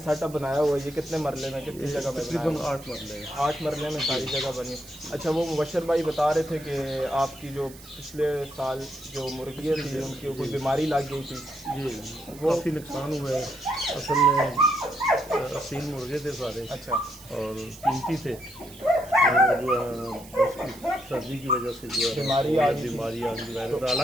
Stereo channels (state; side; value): noise; right; hiss, 19 dB below the sound